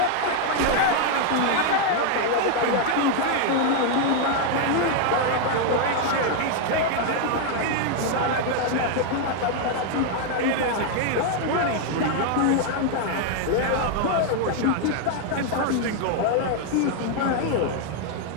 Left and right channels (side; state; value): both; different; correlation 0.00